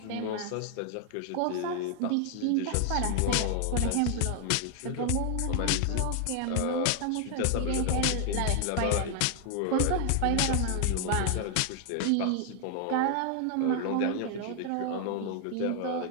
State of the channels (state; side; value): different; both; correlation 0.00